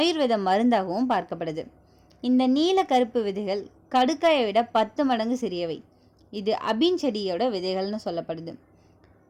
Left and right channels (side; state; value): both; identical; correlation 1.00